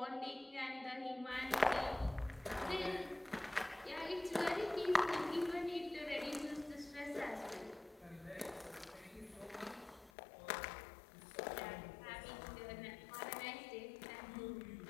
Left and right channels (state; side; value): drops out; right; at 10.1 s